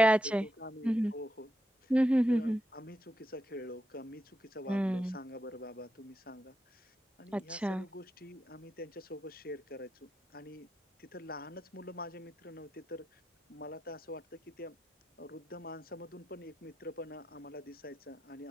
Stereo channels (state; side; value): normal; both; correlation 0.86